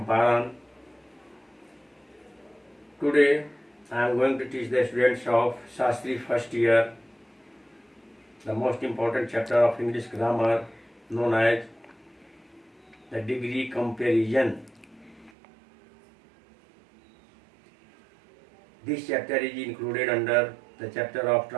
Today, I am going to teach the students of Shastri first year the most important chapter of English grammar known as the degree comparison. This chapter is included under the chapter of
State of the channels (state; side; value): drops out; left; at 15.3 s